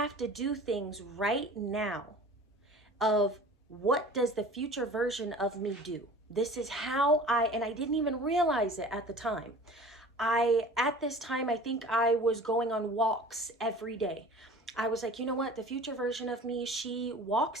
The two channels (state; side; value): normal; both; correlation 0.42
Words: to do things right now of what does the future version of me do? This is how and I didn't even realize it at the time. At this time, I think I was going on walks every day. I was like, you know what? The future version of me, she